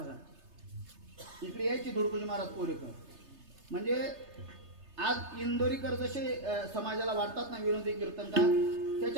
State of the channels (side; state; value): left; late; 3.3 ms